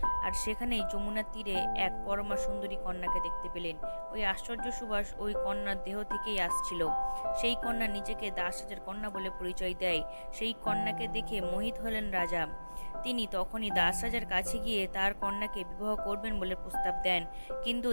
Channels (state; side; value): inverted; both; correlation -1.00